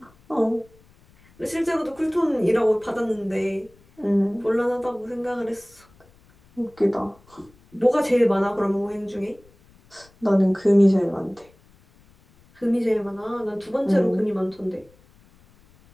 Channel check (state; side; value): noise; left; rumble, 30 dB below the sound